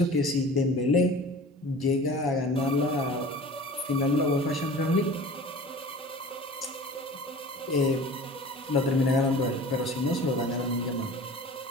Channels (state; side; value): normal; both; correlation 0.40